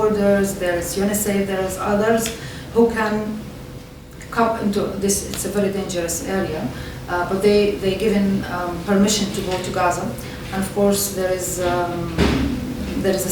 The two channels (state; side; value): identical; both; correlation 1.00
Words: there is UNICEF, there is others who can come into this. It's a very dangerous area, but they given permission to go to Gaza, and of course there is a